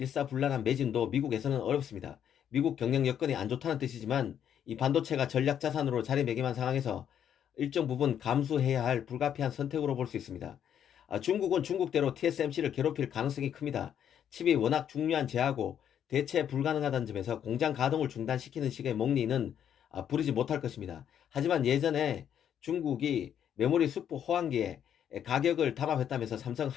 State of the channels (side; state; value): right; quieter; 9.3 dB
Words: 매진도 미국에서는 어렵습니다. 미국 경영 여건이 안 좋다는 뜻이지만 이 반도체가 전략 자산으로 자리매김한 상황에서 일정 부분 감수해야 할 불가피한 선택으로 볼 수 있습니다. 중국은 중국대로 TSMC를 괴롭힐 가능성이 큽니다. 칩이 워낙 중요한 재하고 대체 불가능하다는 점에서 공장 가동을 중단시키는 식의 목리는 부리지 못할 것입니다. 하지만 예전에 중국이 메모리 수프 호황기에 가격을 담합했다면서 삼성